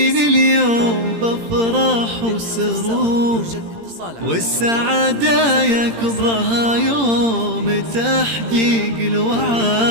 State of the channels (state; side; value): late; left; 17 ms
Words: اليوم بافراح وسرور، والسعادة يا كبرها يوم تحقيق